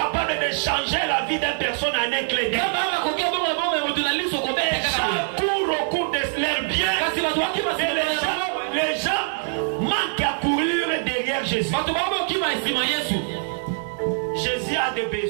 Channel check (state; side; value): silent; left; 63 dB below the other